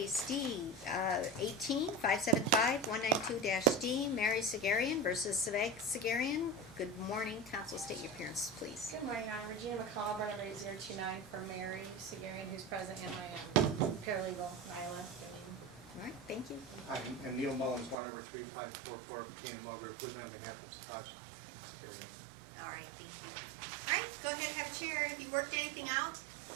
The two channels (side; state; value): left; drops out; at 17.9 s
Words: D, 18-575-192-D, Mary Sagherian versus Sagherian. Good morning, counsel, state your appearance, please. Good morning, I'm Regina McCall, Brenda 029 for Mary Sagherian, who's present, and my paralegal, Nyla. All right, thank you. Hi, and Neil Mullins, 1-3544, Canaan Welders, living on behalf of Sagherian. All right, thank you. All right, go ahead and have a chair. Have you worked anything out?